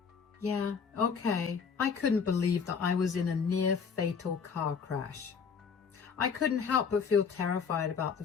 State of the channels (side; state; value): right; quieter; 6.1 dB